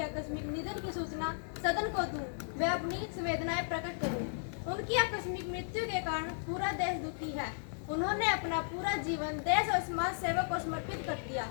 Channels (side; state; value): right; silent; digital silence